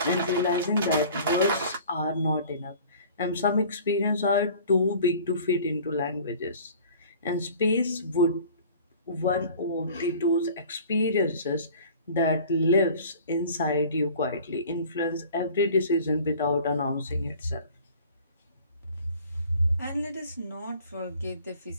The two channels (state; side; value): inverted; both; correlation -0.47